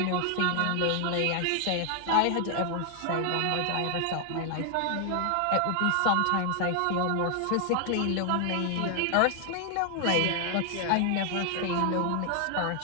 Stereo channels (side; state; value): both; different; correlation 0.00